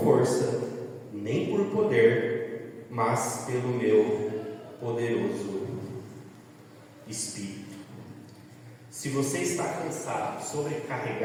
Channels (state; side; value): identical; both; correlation 1.00